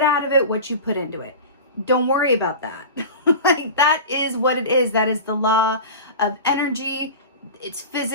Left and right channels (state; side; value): inverted; both; correlation -0.32